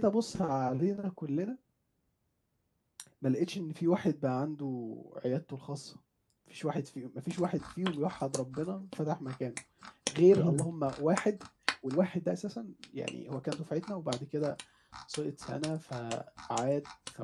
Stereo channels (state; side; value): identical; both; correlation 1.00